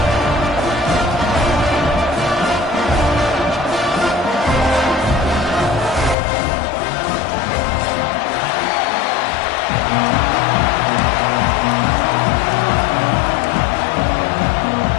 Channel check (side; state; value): right; drops out; at 6.2 s